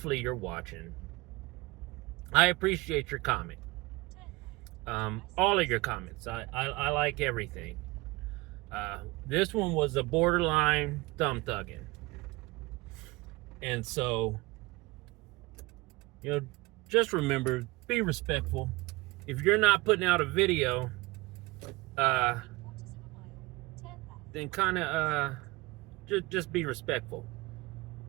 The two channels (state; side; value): quieter; left; 22.2 dB